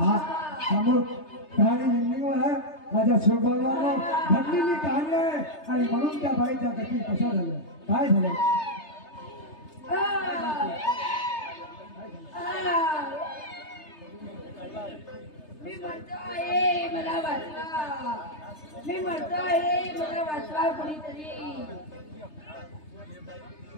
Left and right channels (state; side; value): late; right; 3.3 ms